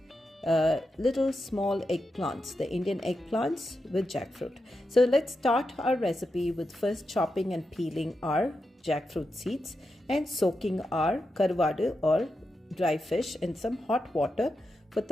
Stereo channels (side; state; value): both; normal; correlation 0.88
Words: little small eggplants, the Indian eggplants with jackfruit. So let's start our recipe with first chopping and peeling our jackfruit seeds and soaking our karuvadu or dry fish in some hot water for